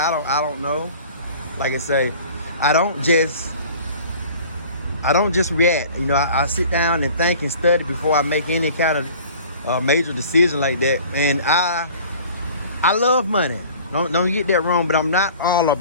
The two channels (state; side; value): inverted; both; correlation -0.47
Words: don't know. Like I say, I don't just react. You know, I sit down and think and study before I make any kind of major decision like that. And I love money. Don't get that wrong, but I'm not all